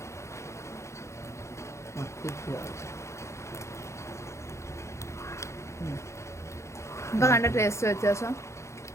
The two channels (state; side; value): late; right; 0.14 ms